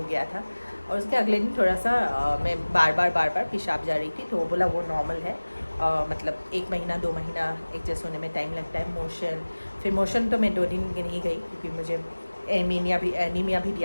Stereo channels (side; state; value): both; inverted; correlation -1.00